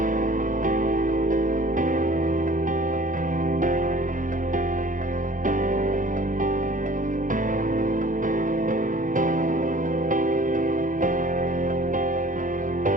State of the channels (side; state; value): left; late; 0.38 ms